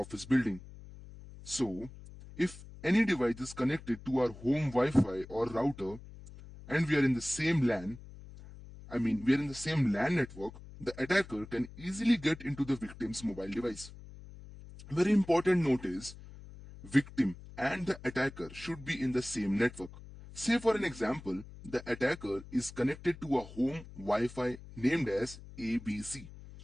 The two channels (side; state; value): left; noise; hum, 16 dB below the sound